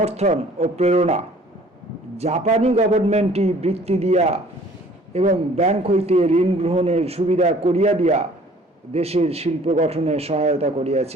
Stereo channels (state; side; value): normal; both; correlation 0.53